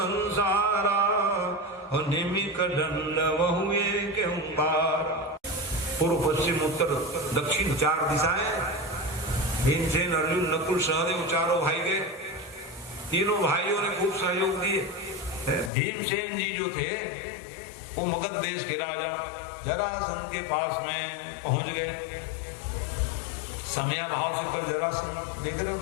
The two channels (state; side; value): drops out; right; at 15.7 s